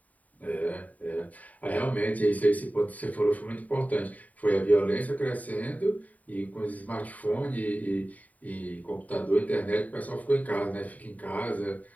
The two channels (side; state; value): right; late; 0.072 ms